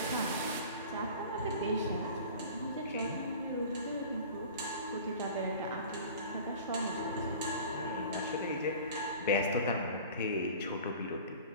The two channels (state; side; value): inverted; both; correlation -0.41